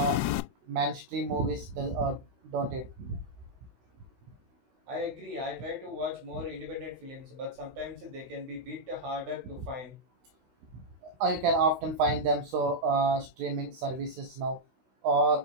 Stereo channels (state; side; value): late; left; 16 ms